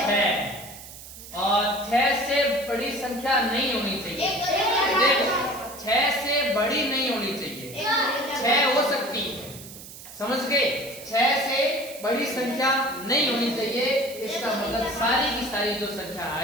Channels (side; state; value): right; noise; hiss, 15 dB below the sound